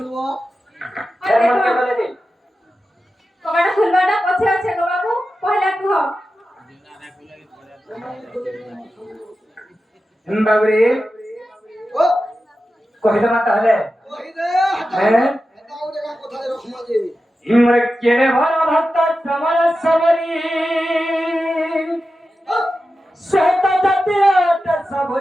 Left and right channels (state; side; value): normal; both; correlation 0.92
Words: মনকে বলে দিন কবাটা খুলবাটা পছে আছে গো বাবু পহলা কুহ বাবুরে ও কহিলে মা তাহলে ওই দে হ্যাঁ এটা ওরে কোথায় রকম আছে ইমরে কেড়ে ভরা ভক্ত সমর সমরি শ্বেত জাতির অতে